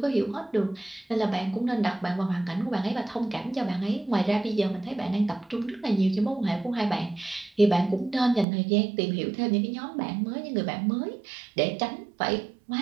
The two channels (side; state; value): left; drops out; at 8.5 s